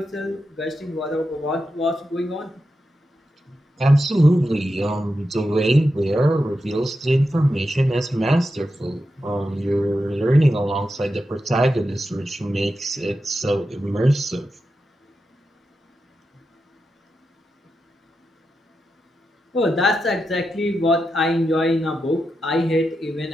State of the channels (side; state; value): both; normal; correlation 0.88